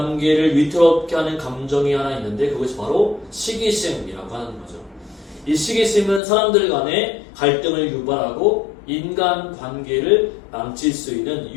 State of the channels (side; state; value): right; drops out; at 6.2 s